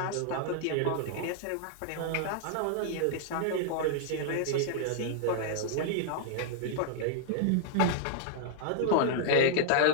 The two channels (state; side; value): different; both; correlation -0.01